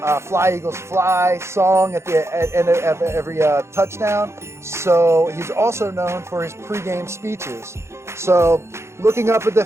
Fly Eagles Fly song at the end of every touchdown. So he's also known for his pregame speeches. So looking up at the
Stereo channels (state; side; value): late; left; 0.13 ms